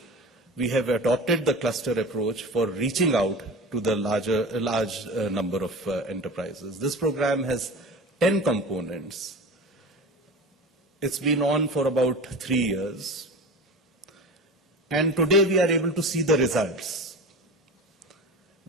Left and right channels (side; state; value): both; normal; correlation 0.32